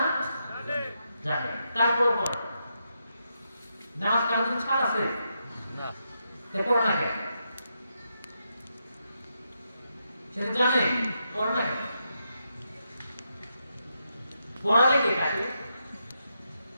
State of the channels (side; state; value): both; inverted; correlation -0.83